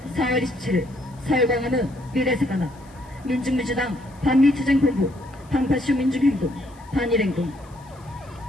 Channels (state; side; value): noise; left; hiss, 29 dB below the sound